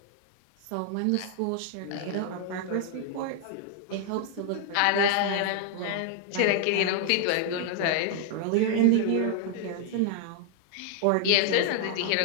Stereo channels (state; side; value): different; both; correlation 0.00